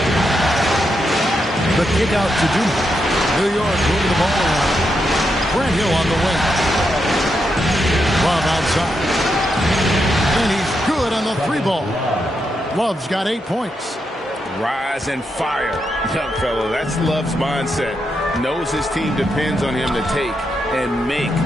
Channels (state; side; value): normal; both; correlation 0.83